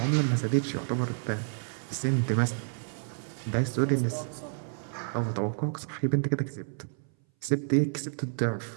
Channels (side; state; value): left; silent; 58 dB below the other